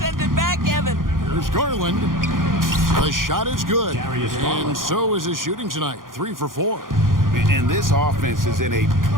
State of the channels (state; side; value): late; left; 0.90 ms